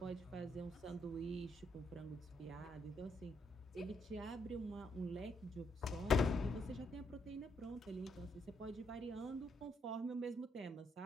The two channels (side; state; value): both; normal; correlation 0.76